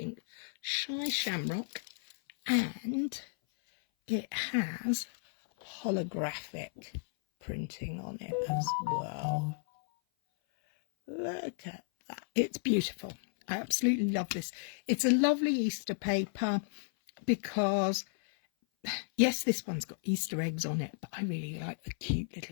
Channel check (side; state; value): right; silent; 56 dB below the other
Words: shy shamrock, and it has holographic printing on it as well. Look at that, it's beautiful. I absolutely love this. It's a lovely Easter paper because, yes, this one's got Easter eggs on it, but I really like the cute